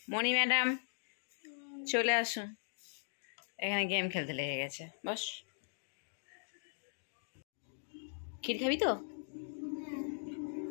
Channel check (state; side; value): silent; right; digital silence